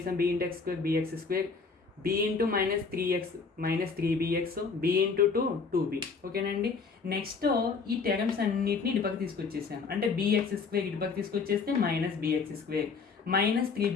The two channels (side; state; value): right; quieter; 4.9 dB